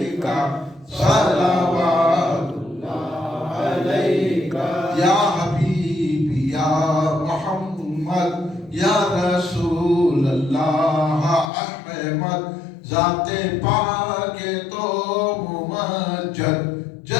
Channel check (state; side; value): drops out; right; at 11.5 s